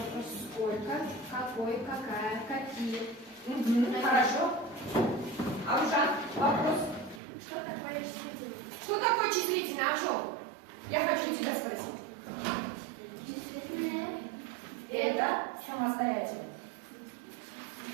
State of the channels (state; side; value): drops out; left; at 7.2 s